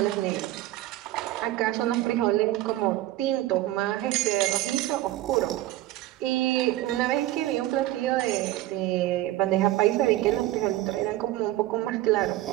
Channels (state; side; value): quieter; left; 15.6 dB